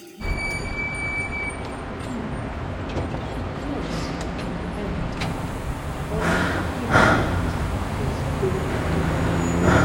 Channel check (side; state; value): both; identical; correlation 1.00